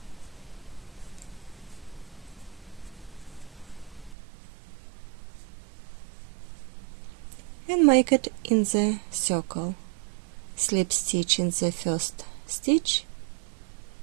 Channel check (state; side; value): drops out; left; at 4.2 s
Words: And make it in the circle. Slip stitch in the first stitch,